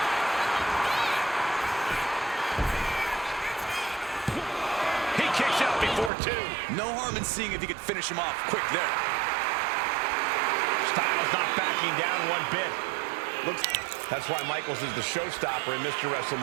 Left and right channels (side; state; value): left; drops out; at 6.1 s